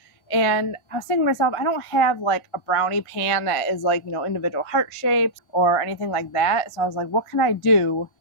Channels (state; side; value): late; right; 1.5 ms